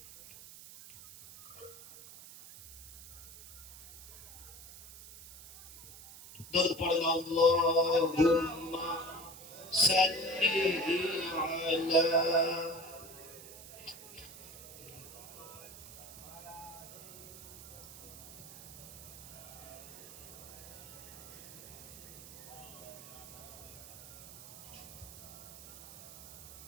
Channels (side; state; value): right; noise; hiss, 15 dB below the sound